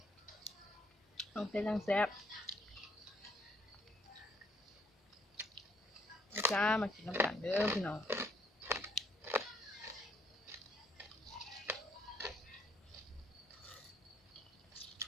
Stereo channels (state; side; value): normal; both; correlation 0.68